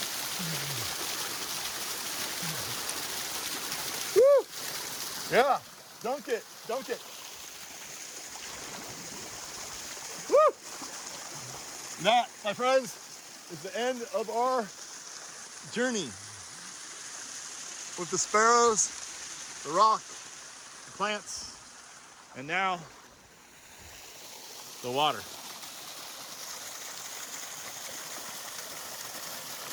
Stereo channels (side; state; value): both; identical; correlation 1.00